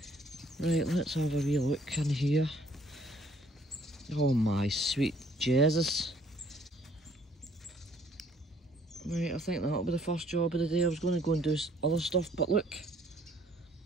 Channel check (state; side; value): normal; both; correlation 0.61